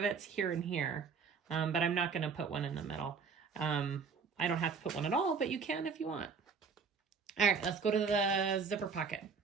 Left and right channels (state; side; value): quieter; left; 5.5 dB